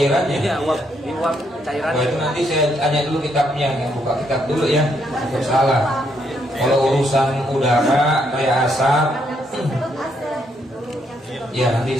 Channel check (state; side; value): normal; both; correlation 0.74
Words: Iya, uap cairan. Oh itu nanti saya tanya dulu kitabnya, yang buka kitab dulu ya. Tidak salah. Kalau urusan udara kayak asap, ya